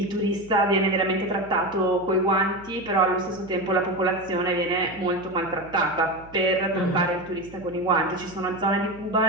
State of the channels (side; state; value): right; noise; hum, 21 dB below the sound